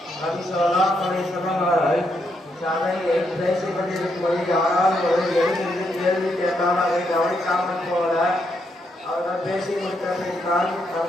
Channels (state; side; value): normal; both; correlation 0.78